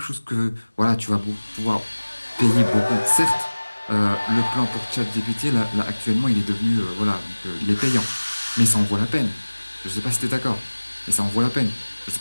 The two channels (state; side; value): inverted; both; correlation -1.00